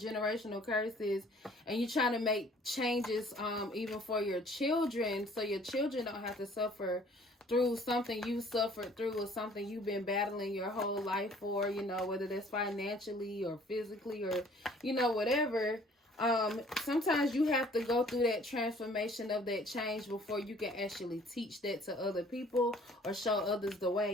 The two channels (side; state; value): both; normal; correlation 0.55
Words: curses and you trying to make changes even for your children, so your children don't have to suffer through something you suffered through, or something you've been battling your whole life for, whether that's financially or physically or, whatever. Sometimes you have to go through that transformation of that change before you can actually teach that to other people or show others the